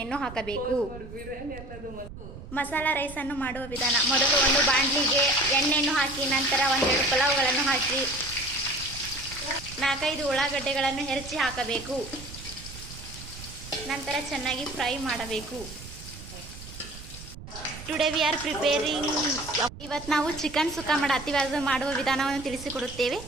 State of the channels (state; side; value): noise; right; rumble, 14 dB below the sound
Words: ಹಾಕಬೇಕು. ಮಸಾಲಾ ರೈಸನ್ನು ಮಾಡುವ ವಿಧಾನ. ಮೊದಲು ಒಂದು ಬಾಣಲಿಗೆ ಎಣ್ಣೆಯನ್ನು ಹಾಕಿ ನಂತರ ಒಂದೆರಡು ಪಲಾವ್ಗಳನ್ನು ಹಾಕಿ 4-5 ಉಳ್ಳಾಗಡ್ಡೆಗಳನ್ನು ಹೆಚ್ಚಿ ಹಾಕಬೇಕು. ನಂತರ ಚೆನ್ನಾಗಿ ಫ್ರೈ ಮಾಡಬೇಕು. Today we are preparing. ಇವತ್ತು ನಾವು ಚಿಕನ್ ಸುಕ್ಕ ಮಾಡುವ ವಿಧಾನವನ್ನು ತಿಳಿಸಿಕೊಡುತ್ತೇವೆ.